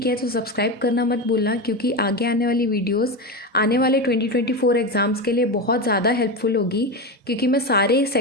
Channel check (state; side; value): normal; both; correlation 0.18